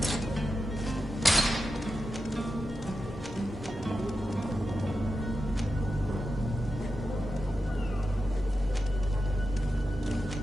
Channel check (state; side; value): normal; both; correlation 0.91